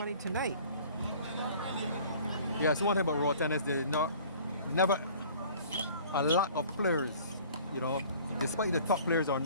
tonight. Yes, one thing about road tennis, there's never a lot of players, you know, despite the top players are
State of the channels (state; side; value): inverted; both; correlation -0.49